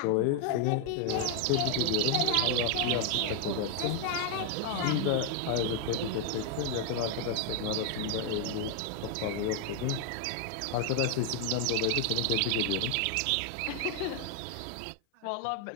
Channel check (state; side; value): different; both; correlation 0.00